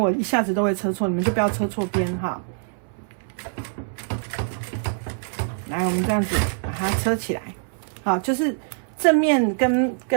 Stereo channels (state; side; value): silent; left; 60 dB below the other